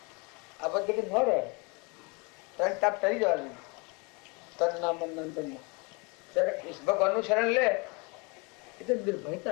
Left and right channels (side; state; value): right; quieter; 30.2 dB